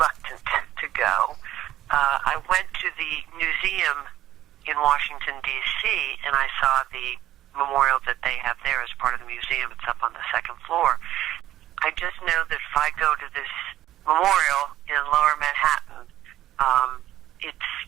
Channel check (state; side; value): quieter; left; 13.3 dB